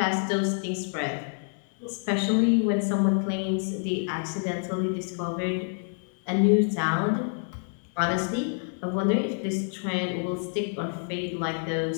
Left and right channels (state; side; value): silent; right; 60 dB below the other